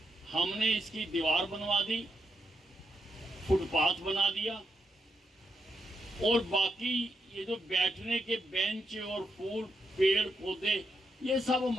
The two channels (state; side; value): normal; both; correlation 0.82